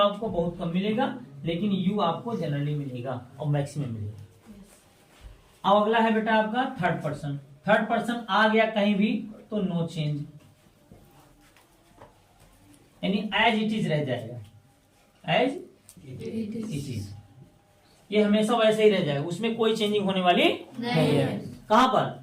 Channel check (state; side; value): identical; both; correlation 1.00